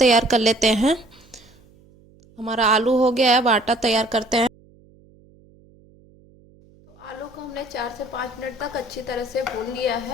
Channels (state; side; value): noise; right; hum, 28 dB below the sound